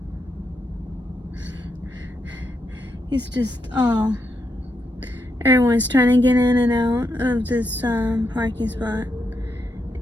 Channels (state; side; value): normal; both; correlation 0.82